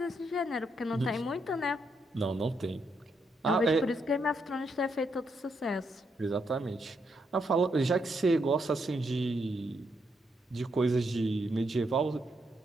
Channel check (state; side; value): normal; both; correlation 0.78